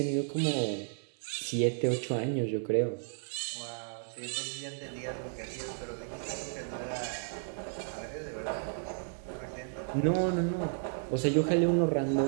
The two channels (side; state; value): left; silent; digital silence